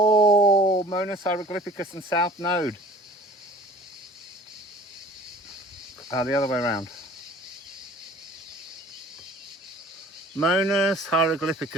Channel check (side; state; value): both; normal; correlation 0.47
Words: Hieroglyphicus and South Node. The other way around. Monas